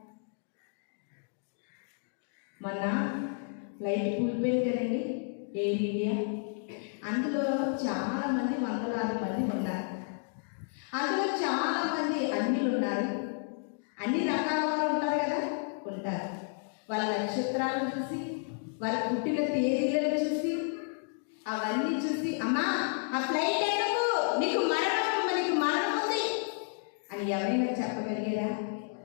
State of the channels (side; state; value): right; silent; 57 dB below the other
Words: మొన్న ఫ్లైట్ కూలిపోయింది కదండి, ఎయిర్ ఇండియా. అందులో చాలామంది, వందలాది మంది ఉన్నారు. అందులో చాలామంది అన్యులు ఉన్నారు. అన్ని రకాల వారు ఉంటారు కదా, ఉంటారు. వాళ్ళ నక్షత్రాలను చూసి, వాళ్ళ పుట్టిన తేదీలను చూసి, అవన్నీ చూసి, అమ్మా ఆ ఫ్లైట్ ఎందుకు, నీకు మరణం ఉంది అని ఎవరైనా చెప్పగలిగారా?